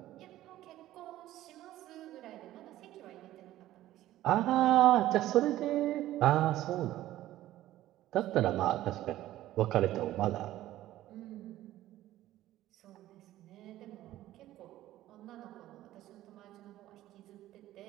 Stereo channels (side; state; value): left; quieter; 14.5 dB